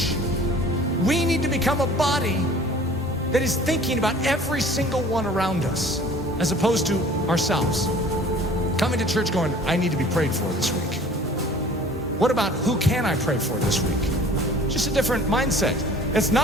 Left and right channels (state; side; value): normal; both; correlation 0.48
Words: We need to become a body that is thinking about every single one around us, as opposed to ourselves. Coming to church going, I need to be prayed for this week. What about who can I pray for this week? Just a different mindset. It's